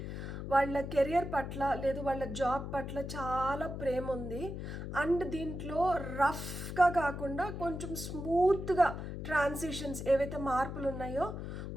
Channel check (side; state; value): left; noise; hum, 6 dB below the sound